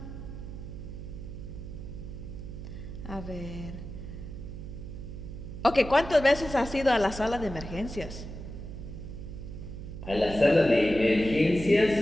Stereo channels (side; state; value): right; noise; hum, 10 dB below the sound